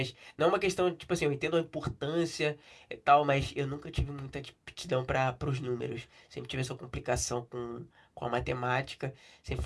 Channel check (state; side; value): identical; both; correlation 1.00